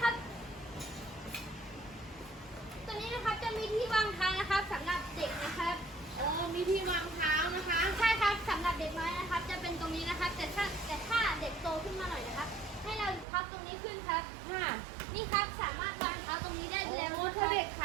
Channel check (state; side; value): drops out; left; at 13.2 s